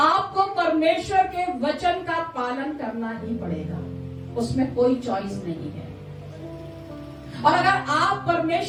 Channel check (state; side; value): identical; both; correlation 1.00